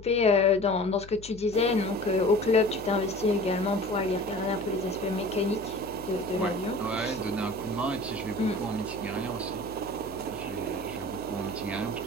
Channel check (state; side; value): noise; left; hum, 17 dB below the sound